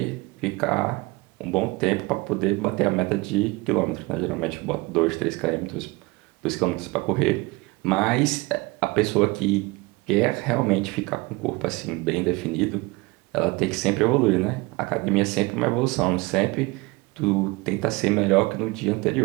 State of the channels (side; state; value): left; quieter; 24.0 dB